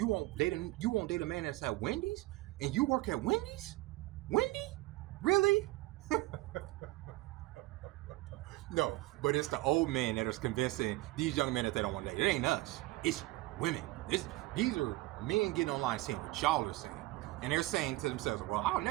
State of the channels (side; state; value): left; quieter; 19.4 dB